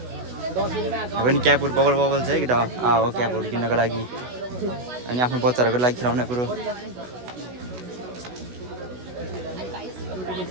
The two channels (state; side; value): late; left; 16 ms